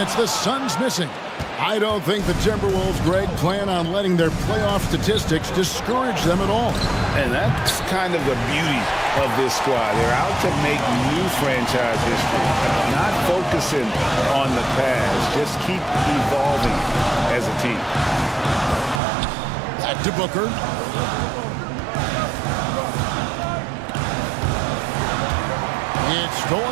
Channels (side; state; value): left; drops out; at 19.0 s